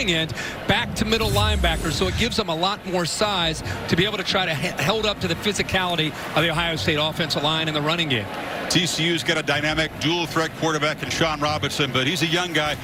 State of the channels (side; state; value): both; identical; correlation 1.00